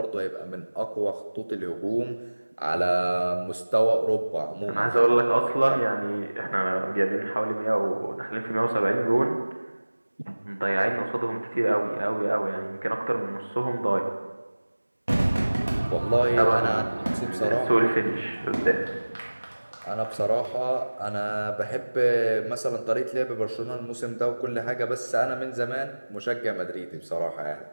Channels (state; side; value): inverted; both; correlation -1.00